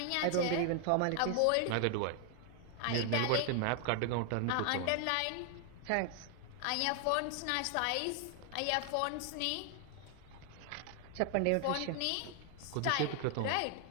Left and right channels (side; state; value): both; different; correlation 0.00